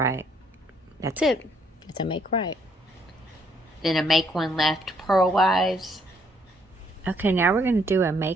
That's it. It's a make right. Then a make 1 left purlwise. Okay, now we're going to do a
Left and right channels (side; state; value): both; normal; correlation 0.68